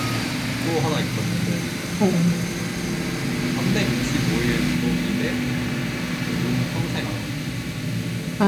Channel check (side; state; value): both; identical; correlation 1.00